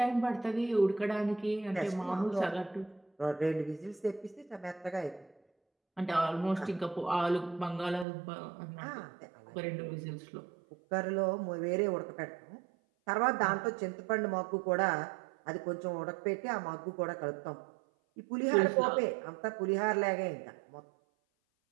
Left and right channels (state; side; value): drops out; left; at 8.1 s